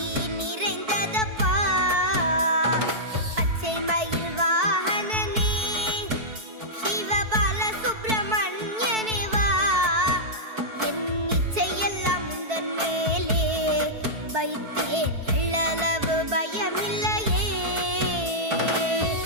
நிறைந்ததப்பா. பச்சை மயில் வாகனனே சிவபால சுப்பிரமணியனே வா, என் இச்சையெல்லாம் உந்தன் மேலே வைத்தேன், எள்ளளவு பயமில்லையே.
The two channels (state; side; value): late; left; 4.6 ms